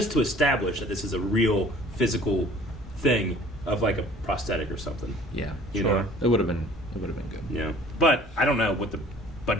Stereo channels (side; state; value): both; normal; correlation 0.51